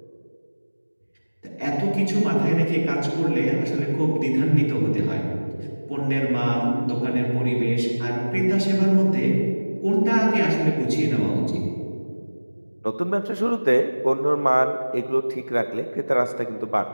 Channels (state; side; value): inverted; both; correlation -1.00